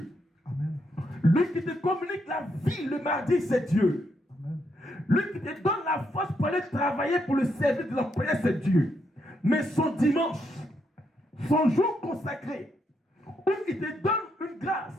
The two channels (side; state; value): both; normal; correlation 0.78